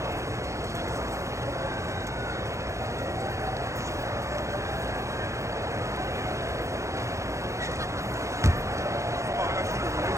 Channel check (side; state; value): left; late; 0.15 ms